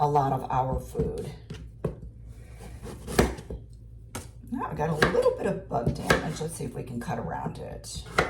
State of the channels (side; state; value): both; identical; correlation 1.00